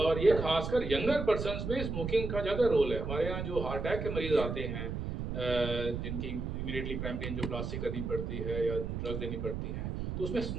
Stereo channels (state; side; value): noise; right; rumble, 4 dB below the sound